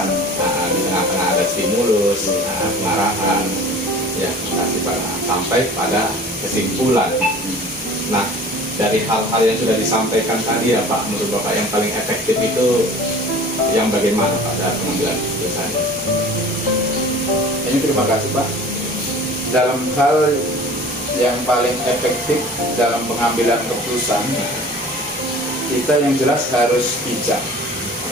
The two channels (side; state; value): both; normal; correlation 0.43